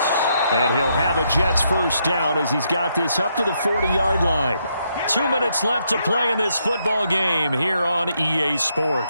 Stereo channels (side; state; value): both; inverted; correlation -0.77